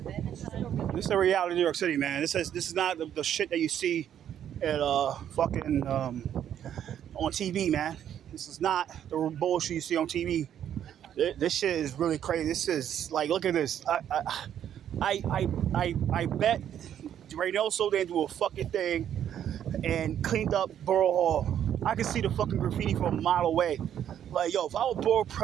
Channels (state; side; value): quieter; left; 9.9 dB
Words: This is the reality of New York City, man. This is not the shit that you see at fucking on TV, man. This is not the bullshit you see on TV. This shit is really crazy. This is like, look at this. I bet Reynoso didn't do a fucking thing and cleaned up Borough Hall. I can see the fucking graffiti from a mile away. Like, yo, if I was borough